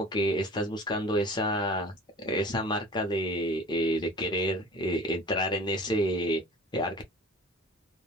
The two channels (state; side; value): normal; both; correlation 0.42